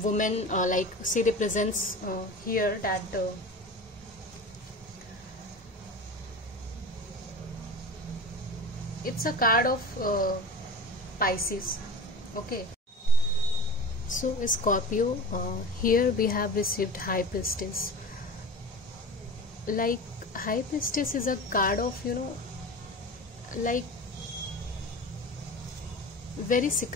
woman, like she represents here that it's a card of Pisces. Okay, so Scorpio, here we have received High Priestess. Like High Priestess is a card of like very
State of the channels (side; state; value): both; normal; correlation 0.33